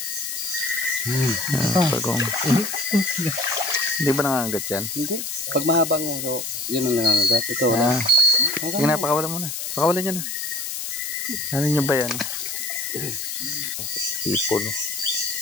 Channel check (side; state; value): left; noise; hiss, 5 dB below the sound